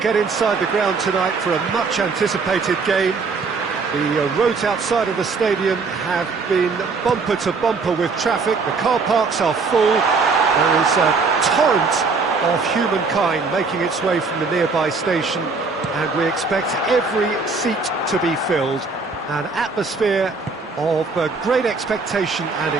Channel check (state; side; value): quieter; left; 4.4 dB